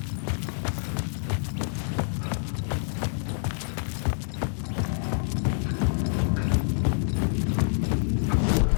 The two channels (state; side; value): silent; right; digital silence